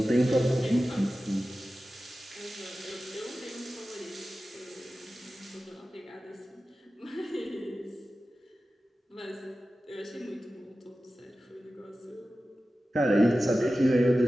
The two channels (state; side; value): normal; both; correlation 0.95